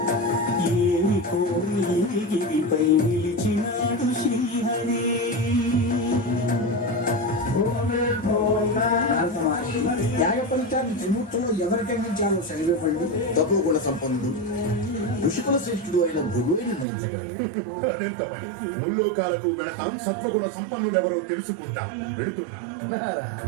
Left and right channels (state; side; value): drops out; left; at 16.9 s